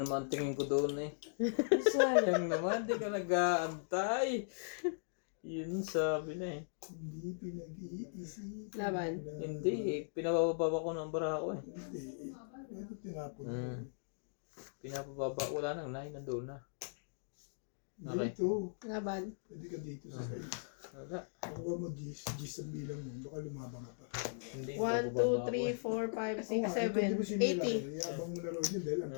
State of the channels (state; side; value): silent; right; digital silence